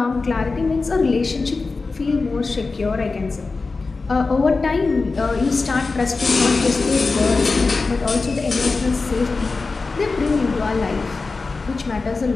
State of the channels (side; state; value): right; quieter; 4.0 dB